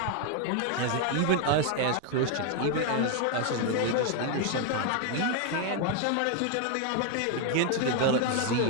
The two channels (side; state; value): both; different; correlation 0.01